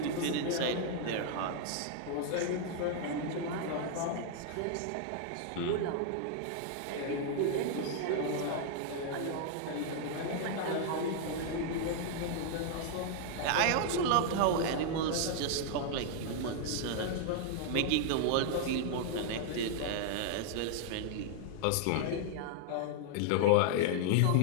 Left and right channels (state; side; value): different; both; correlation 0.00